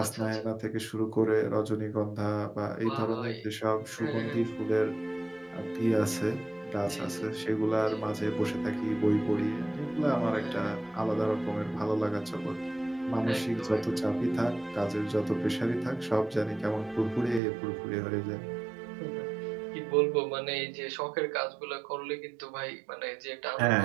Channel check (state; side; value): drops out; left; at 17.4 s